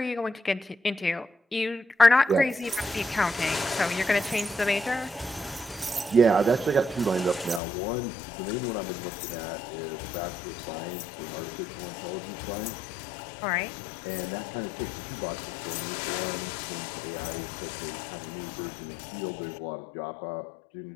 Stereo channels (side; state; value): right; drops out; at 7.6 s